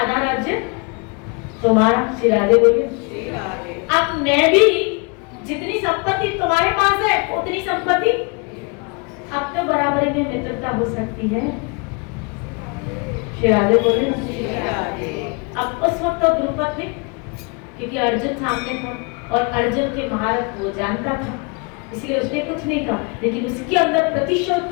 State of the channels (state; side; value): quieter; right; 32.5 dB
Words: राज्य तुम्हारा। श्री राधे बोलिए। अब मैं भी जितनी संपत्ति तुम्हारे पास है उतनी संपत्ति अब तो बराबरी में मित्रता हो सकती है। श्री राधे बोलिए। अब उस वक्त तो द्रुपद ने, क्योंकि अर्जुन सामने था और अर्जुन के महारथ वो जानता था, इसलिए उसने कुछ नहीं कहा, लेकिन उसके अंदर प्रतिशोध